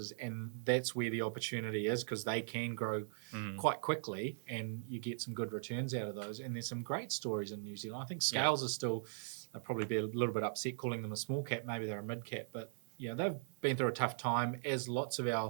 and that's where the opportunity is, because they can grow quite quickly and you get some good returns out of those. And there's some great stories in New Zealand. I think Scales are still, they'll probably be a little bit upset calling them a small cap, maybe they're a mid cap, but they've been through a tough time, as lots of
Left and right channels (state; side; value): silent; left; 51 dB below the other